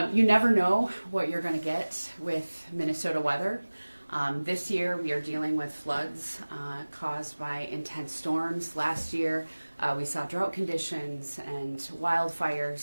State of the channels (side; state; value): both; inverted; correlation -1.00